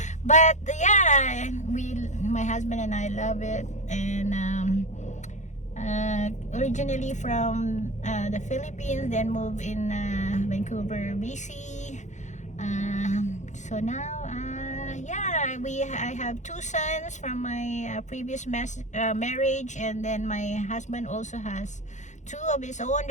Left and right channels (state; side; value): late; right; 0.35 ms